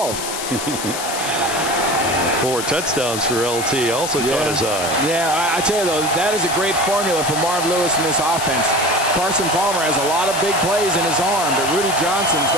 4 touchdowns for LT also caught his eye. Yeah, I tell you though, that is a great formula for Marv Lewis in this offense. Carson Palmer has a lot of big plays in his arm, but Rudy Johnson's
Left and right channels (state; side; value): noise; left; hiss, 6 dB below the sound